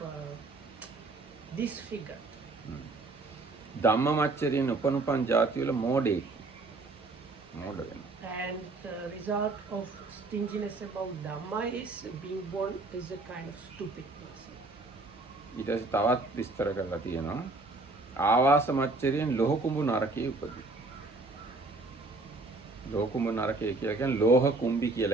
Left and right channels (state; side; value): quieter; left; 3.3 dB